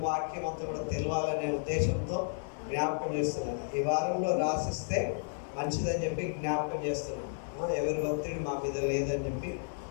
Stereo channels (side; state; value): right; silent; 56 dB below the other